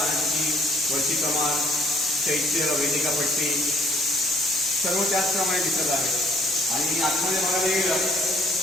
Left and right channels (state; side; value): normal; both; correlation 0.63